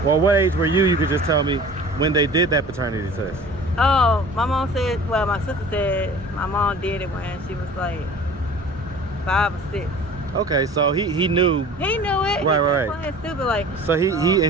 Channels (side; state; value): both; normal; correlation 0.43